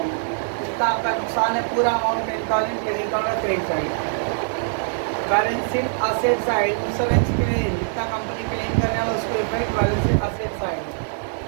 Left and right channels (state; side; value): silent; left; digital silence